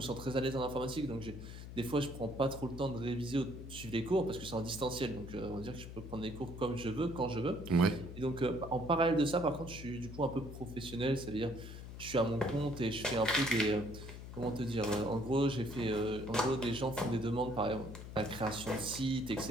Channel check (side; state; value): left; noise; hum, 11 dB below the sound